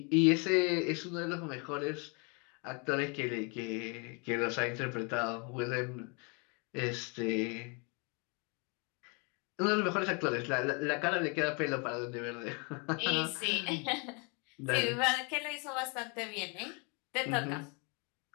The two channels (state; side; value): quieter; right; 33.5 dB